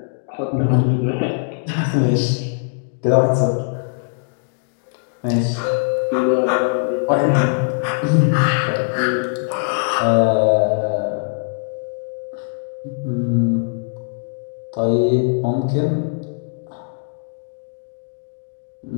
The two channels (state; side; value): silent; right; digital silence